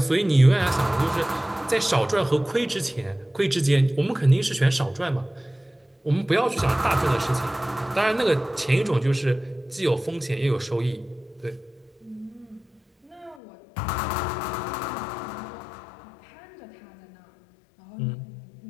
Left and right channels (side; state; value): right; drops out; at 13.4 s